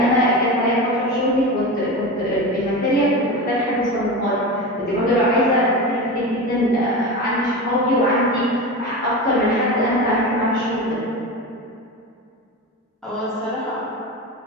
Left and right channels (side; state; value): both; normal; correlation 0.24